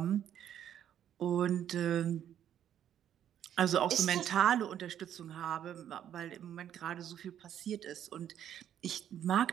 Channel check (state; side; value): quieter; left; 10.2 dB